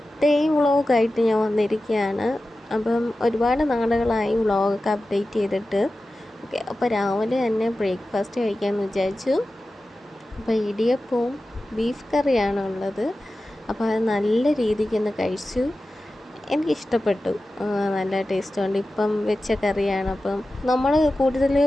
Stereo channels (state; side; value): normal; both; correlation 0.94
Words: ഡേ വ്ളോഗായിട്ട് ഞാൻ വന്നിരിക്കുകയാണ്. അപ്പം ഒരുപാട് നാളുകളായി വ്ളോഗൊക്കെ അപ്ഡേറ്റ് ചെയ്തിട്ട്. ഓക്കെ, അപ്പോൾ രാവിലെ തന്നെ ബ്രേക്ക്ഫാസ്റ്റ് കഴിക്കാമെന്ന് വിചാരിച്ചു. അപ്പോൾ ഇടിയപ്പവും ബീഫ് കറിയാണ് ഉള്ളത്. അപ്പോൾ അത് നല്ല രീതിക്ക് ഒന്ന് കഴിച്ചു. എനിക്കിഷ്ടപ്പെട്ടു, നല്ല ടേസ്റ്റുണ്ട്. ഇപ്പം വെച്ച കറിയാണ്. അപ്പം നമ്മൾ